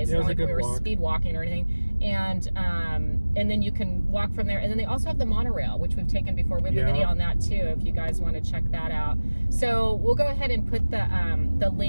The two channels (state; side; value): inverted; both; correlation -1.00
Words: It's not like we were speed walking or anything. And then you can walk from there. And then they also have the monorail, which we've taken before. We have a video on that too, if you guys want to check that out. So we'll go ahead and put the